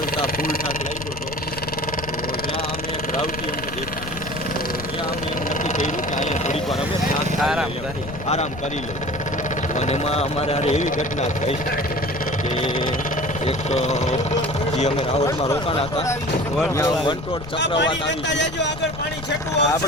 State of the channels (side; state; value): left; noise; rumble, 11 dB below the sound